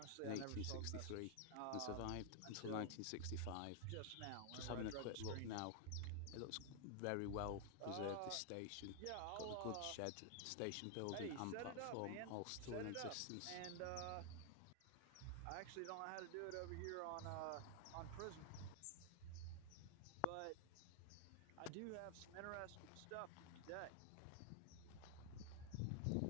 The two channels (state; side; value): different; both; correlation 0.00